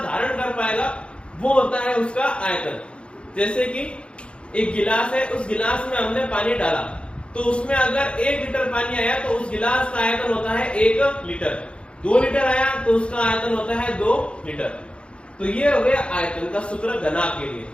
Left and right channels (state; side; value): late; right; 0.057 ms